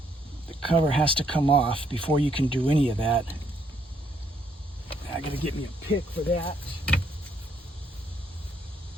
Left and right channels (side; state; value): both; normal; correlation 0.71